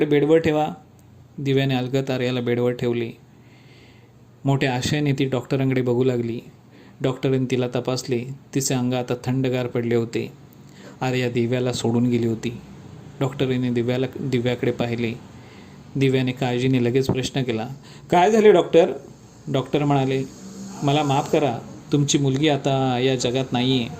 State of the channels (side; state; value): both; identical; correlation 1.00